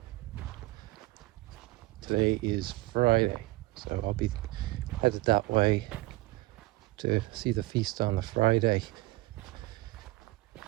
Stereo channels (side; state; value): left; quieter; 20.4 dB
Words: Today is Friday, so I'll be headed that way to see the feast on the Friday.